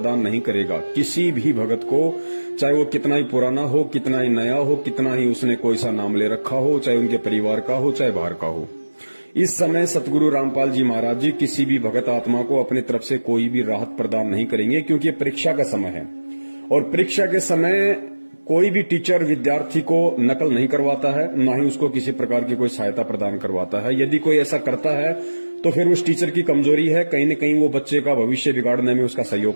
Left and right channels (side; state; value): both; inverted; correlation -1.00